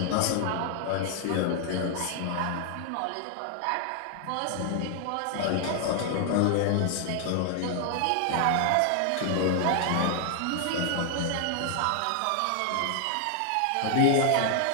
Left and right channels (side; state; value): both; different; correlation 0.00